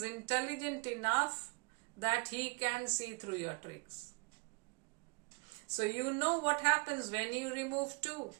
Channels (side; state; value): left; quieter; 31.9 dB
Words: intelligent enough that he can see through your tricks. So you know what happens when you remove 2.